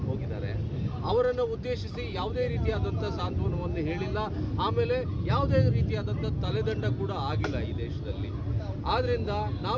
ಹೋಗಿದ್ದಾರೆ. ಅವರನ್ನು ಉದ್ದೇಶಿಸಿ ಯಾವುದೇ ರೀತಿಯಾದಂಥ ಸಾಂತ್ವನವನ್ನು ಹೇಳಿಲ್ಲ. ಆಮೇಲೆ ಯಾವುದೇ ರೀತಿಯಾದಂಥ ತಲೆದಂಡ ಕೂಡ ಆಗಿಲ್ಲ ಈ ದೇಶದಲ್ಲಿ. ಆದ್ದರಿಂದ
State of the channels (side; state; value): both; identical; correlation 1.00